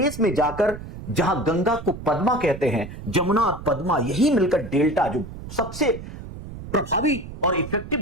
में जाकर जहां गंगा को पद्मा कहते हैं, जमुना और पद्मा यही मिलकर डेल्टा, जो सबसे प्रभावी और इफेक्टिव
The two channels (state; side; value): noise; right; rumble, 12 dB below the sound